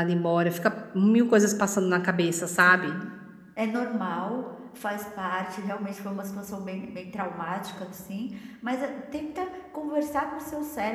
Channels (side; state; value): both; identical; correlation 1.00